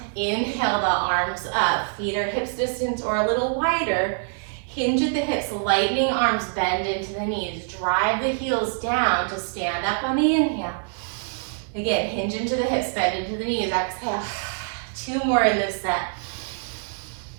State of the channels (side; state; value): left; silent; digital silence